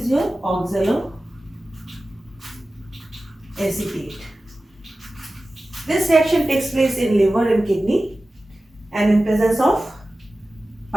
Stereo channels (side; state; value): both; normal; correlation 0.95